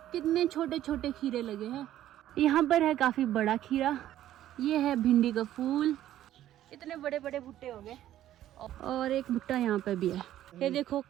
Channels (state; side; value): quieter; left; 12.7 dB